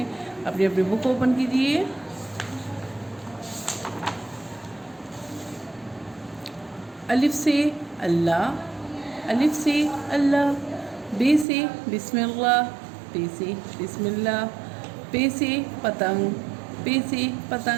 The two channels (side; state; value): left; drops out; at 11.5 s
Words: अपनी अपनी बुक ओपन कीजिए। अलिफ से अल्लाह, अलिफ से अल्लाह। बे से बिस्मिल्लाह, पे से बिस्मिल्लाह। पे से पतंग, पे से